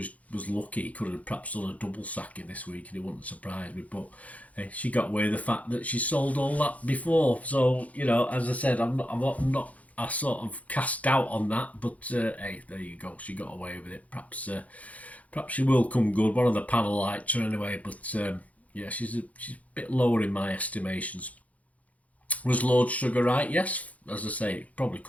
lucky. He could have perhaps done a double sacking this week and it wouldn't surprise me, but she got away with the fact that she sold all that before. So, you know, as I said, I'm not I sort of cast doubt on that, but hey, there you go, she got away with it. Perhaps she will come good. One of the panel liked her anyway, but yeah, she's a bit lower in my estimations. Was Lord Sugar right? Yes, as I say, it probably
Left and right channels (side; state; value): right; late; 0.069 ms